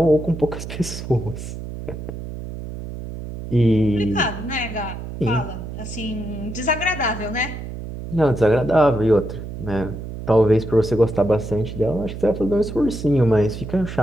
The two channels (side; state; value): right; noise; hum, 9 dB below the sound